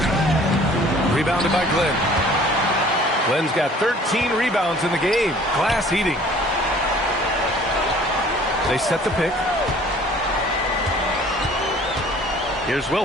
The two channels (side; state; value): both; normal; correlation 0.52